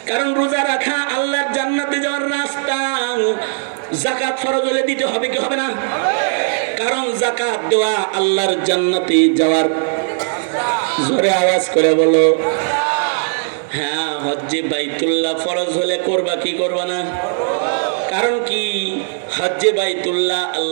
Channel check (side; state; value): left; silent; digital silence